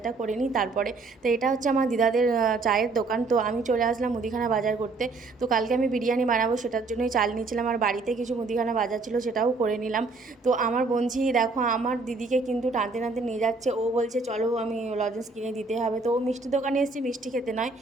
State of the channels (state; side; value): quieter; left; 3.8 dB